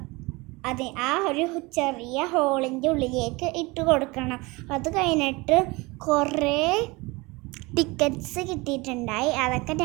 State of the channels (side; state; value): left; quieter; 24.2 dB